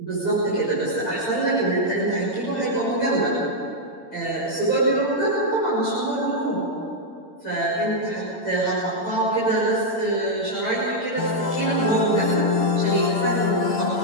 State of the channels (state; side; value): late; right; 8.8 ms